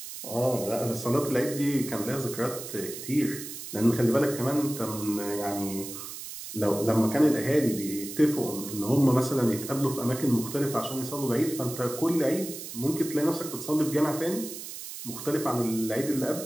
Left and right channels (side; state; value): right; noise; hiss, 10 dB below the sound